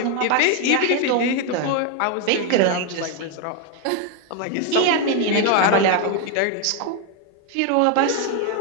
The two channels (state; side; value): different; both; correlation 0.01